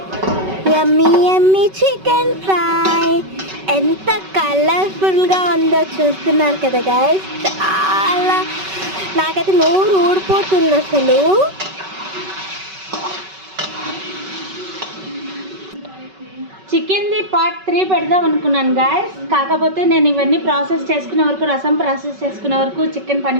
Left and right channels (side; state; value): left; late; 5.3 ms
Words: యమ్మీ యమ్మీ చికెన్ ఫ్రై ఎంత కలర్ఫుల్గా ఉందో చూస్తున్నారు కదా గాయస్. చాలా నాకైతే నోరు ఊడిపోతుంది అసలు. చికెన్ది పార్ట్ 3 పెడదాం అనుకున్నాను గాయస్. కాకపోతే నేను ఇవన్నీ ప్రాసెస్ చేసుకునే వరకు, రసం ప్రాసెస్ చేసుకునే వరకు చికెన్